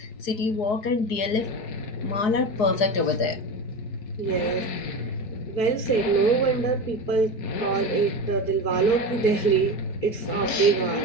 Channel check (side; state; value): right; late; 4.6 ms